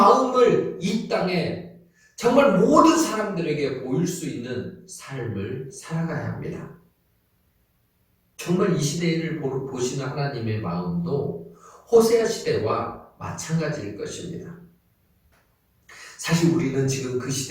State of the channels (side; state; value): both; identical; correlation 1.00